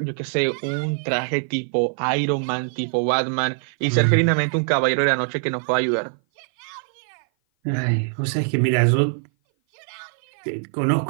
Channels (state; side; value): silent; left; 57 dB below the other